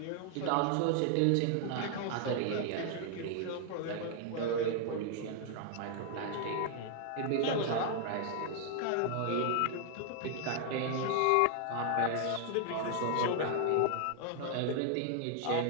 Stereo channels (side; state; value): both; different; correlation 0.00